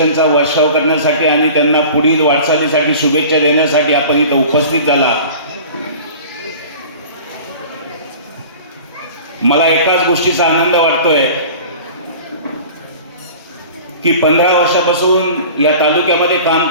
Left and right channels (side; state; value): both; inverted; correlation -0.41